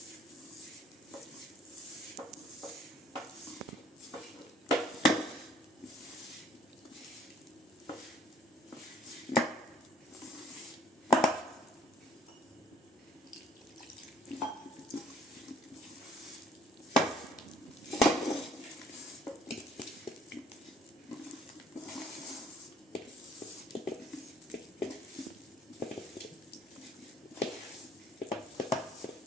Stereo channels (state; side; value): normal; both; correlation 0.58